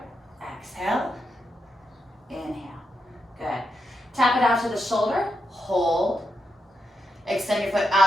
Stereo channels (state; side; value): normal; both; correlation 0.84